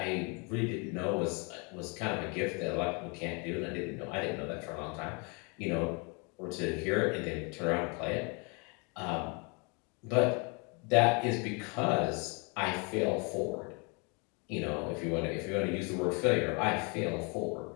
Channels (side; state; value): right; quieter; 32.8 dB